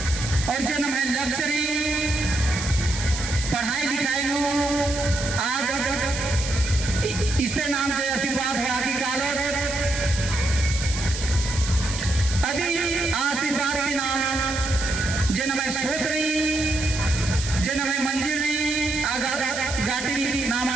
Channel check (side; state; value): right; noise; hiss, 7 dB below the sound